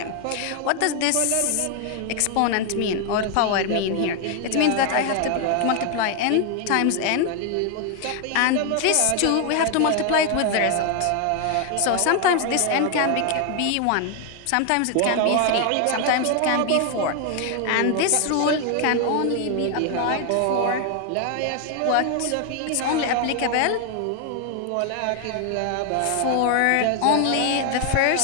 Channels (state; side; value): different; both; correlation 0.01